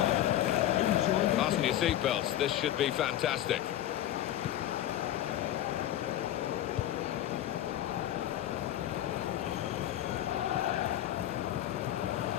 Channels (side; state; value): right; quieter; 12.5 dB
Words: Fasten your seatbelts, this should be fantastic.